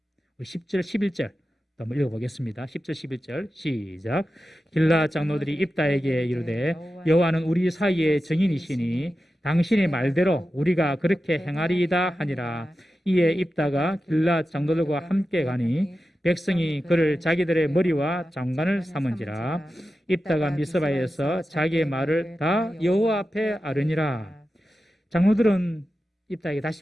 우리 10절, 11절 한번 읽어보겠습니다. 10절, 11절 시작. 길르앗 장로들이 입다에게 이르되 여호와는 우리 사이의 증인이시니 당신의 말대로 우리가 그렇게 행하리이다 하니라. 이에 입다가 길르앗 장로들과 함께 가니 백성이 그를 자기들의 머리와 장관을 삼은지라. 입다가 미스바에서 자기의 말을 다 여호와 앞에 아뢰니라. 장로들은 입다에게 다시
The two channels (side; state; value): both; normal; correlation 0.92